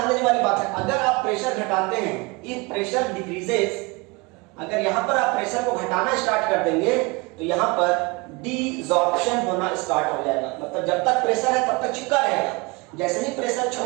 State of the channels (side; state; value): left; quieter; 26.4 dB